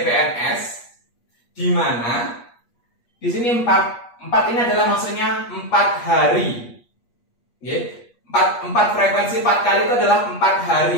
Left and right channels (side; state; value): right; late; 8.4 ms